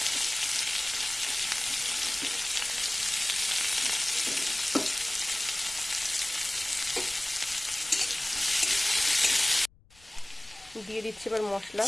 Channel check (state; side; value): noise; left; rumble, 27 dB below the sound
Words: দিয়ে দিচ্ছি এবার মশলা,